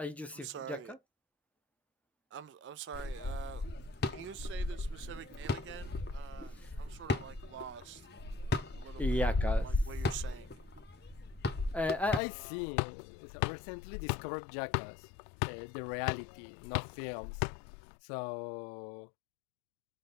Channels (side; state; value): right; drops out; at 12.2 s